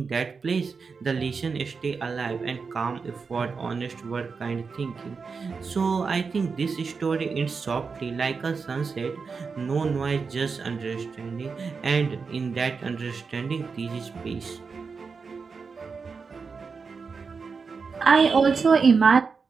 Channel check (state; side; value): quieter; left; 5.1 dB